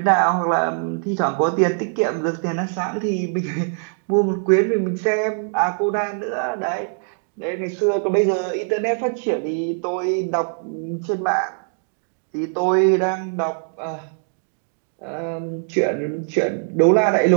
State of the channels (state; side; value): silent; left; digital silence